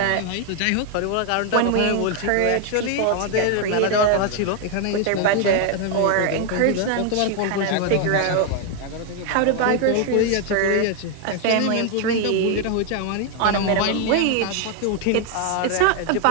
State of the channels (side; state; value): both; different; correlation 0.01